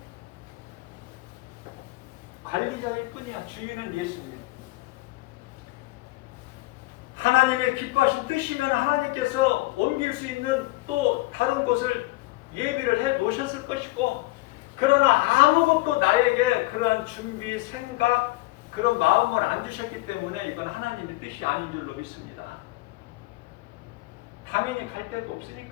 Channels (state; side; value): quieter; right; 20.6 dB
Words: 관리자일 뿐이야. 주인은 예수님이야. 하나님의 기뻐하신 뜻이면 하나님께서 옮길 수 있는 또 다른 곳을 예비를 해 놓으셨을 것이고, 그러나 아무것도 나에게 그러한 준비, 생각, 그런 마음을 안 주셨기 때문에 이건 하나님의 뜻이 아닌 줄로 믿습니다. 당연히 갈 데도